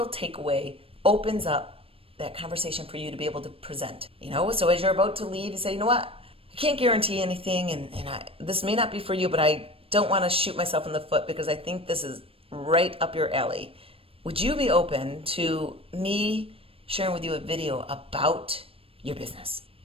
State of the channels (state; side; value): late; left; 0.28 ms